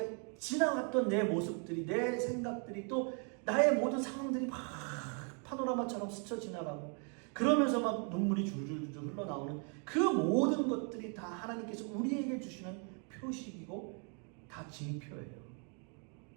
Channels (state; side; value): quieter; left; 39.2 dB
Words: 지나갔던 내 모습들이, 내 생각들이, 또 나의 모든 상황들이 막 파노라마처럼 스쳐 지나가고 그러면서 막 눈물이 줄줄줄 흘러나오는 그 모든 것들이 다 하나님께서 우리에게 주시는 표식이고 다 징표예요.